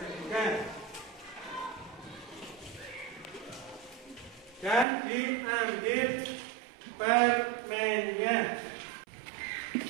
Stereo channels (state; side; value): drops out; left; at 4.9 s